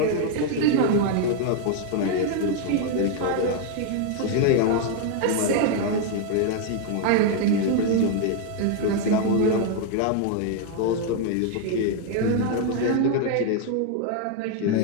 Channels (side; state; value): both; different; correlation 0.00